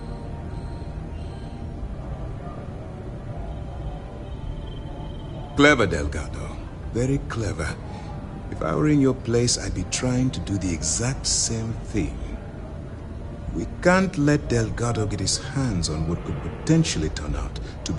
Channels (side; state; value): both; identical; correlation 1.00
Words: Clever, Delgado. Very clever. If I were in your place, I'd be trying to do the exact same thing. We can't let Delgado get his hands on what could potentially turn out to